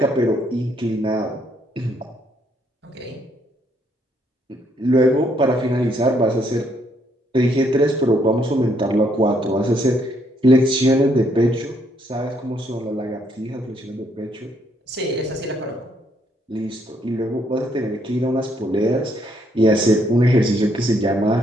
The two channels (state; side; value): normal; both; correlation 0.71